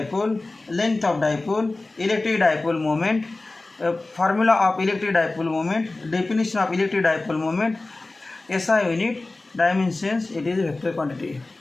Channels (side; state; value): right; quieter; 3.1 dB